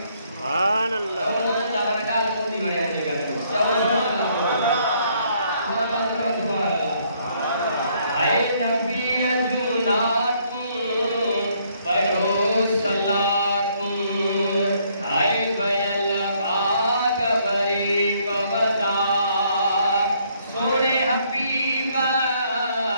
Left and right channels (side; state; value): both; inverted; correlation -0.68